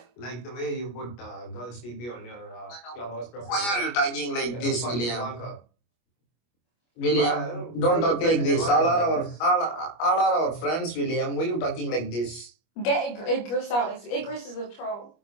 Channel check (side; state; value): right; late; 25 ms